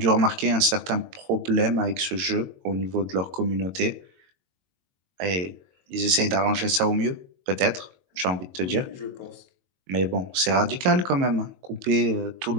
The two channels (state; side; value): late; left; 22 ms